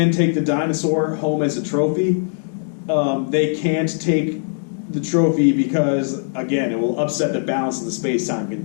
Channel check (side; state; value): right; silent; digital silence